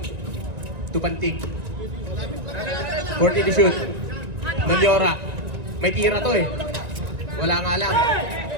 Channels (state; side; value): late; left; 1.9 ms